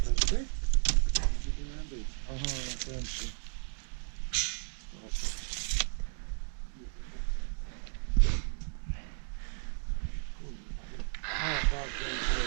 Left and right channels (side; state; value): left; silent; 55 dB below the other